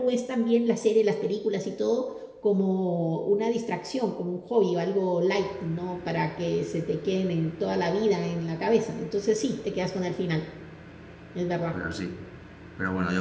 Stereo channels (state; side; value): identical; both; correlation 1.00